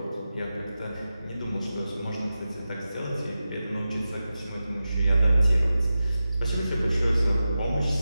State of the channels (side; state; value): both; inverted; correlation -0.93